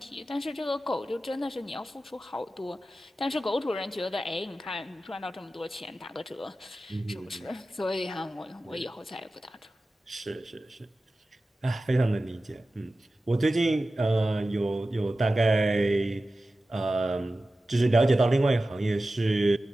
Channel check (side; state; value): both; normal; correlation 0.95